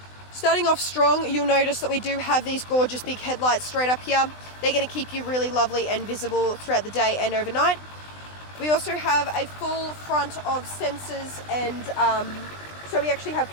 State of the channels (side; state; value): right; late; 20 ms